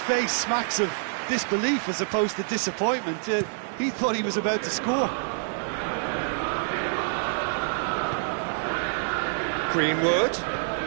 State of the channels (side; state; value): left; silent; digital silence